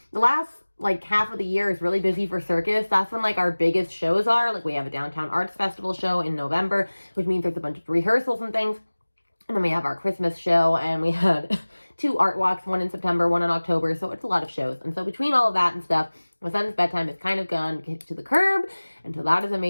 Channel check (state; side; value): inverted; both; correlation -1.00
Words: last like half of the year is really busy for circus. That's when like our biggest shows are. Like we have a downtown arts festival show in November, which means there's a bunch of rehearsals and things. And then we have our Christmas show, and we had 2 art walks, one in September, one in October. So it's a lot of shows. And so between all of that and stuff, my son's bedtime is kind of gone to the curb. And so that is a